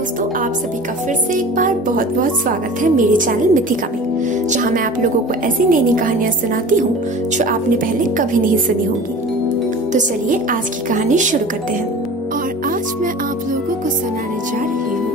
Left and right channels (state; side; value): normal; both; correlation 0.39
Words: आप सभी का फिर से एक बार बहुत बहुत स्वागत है मेरे चैनल मिथिका में, जहां मैं आप लोगों को ऐसी नई नई कहानियां सुनाती हूं जो आपने पहले कभी नहीं सुनी होंगी। तो चलिए आज की कहानी शुरू करते हैं। और आज मैं आप लोगों को सुनाने जा रही